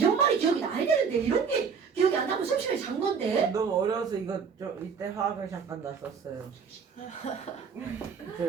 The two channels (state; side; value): quieter; left; 6.1 dB